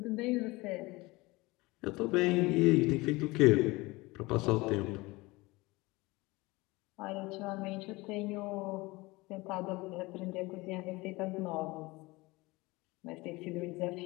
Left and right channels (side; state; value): right; quieter; 22.3 dB